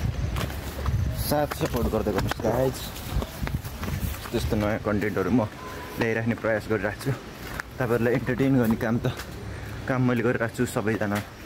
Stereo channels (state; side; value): identical; both; correlation 1.00